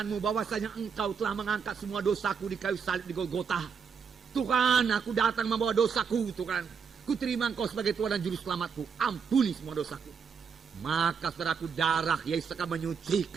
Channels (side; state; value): left; quieter; 6.2 dB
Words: bahwasanya Engkau telah mengangkat semua dosaku di kayu salib di Golgota. Tuhan, aku datang membawa dosaku, Tuhan. Kuterima Engkau sebagai Tuhan dan Juru Selamatku. Ampuni semua dosaku. Maka, saudaraku, darah Yesus akan